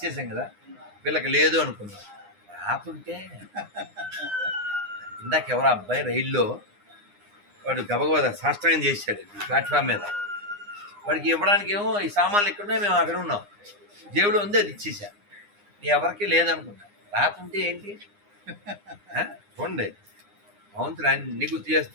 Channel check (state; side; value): late; left; 9.8 ms